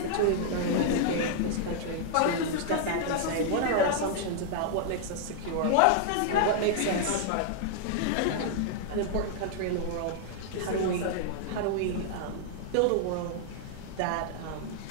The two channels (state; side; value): different; both; correlation -0.01